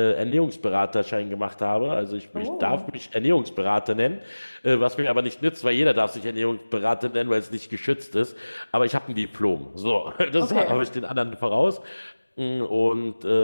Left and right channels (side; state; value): both; inverted; correlation -1.00